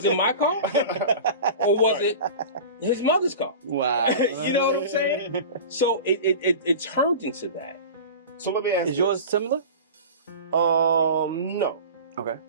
it my car? Or was it his mother's car? Wow. You know what I'm saying? So it turned into that. So let me ask Is yours similar? No. Okay.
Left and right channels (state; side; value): inverted; both; correlation -0.34